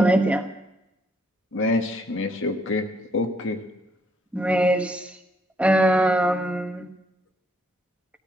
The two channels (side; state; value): both; normal; correlation 0.71